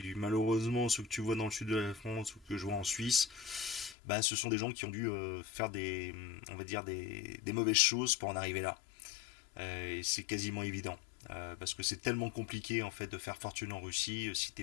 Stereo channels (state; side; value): drops out; right; at 4.0 s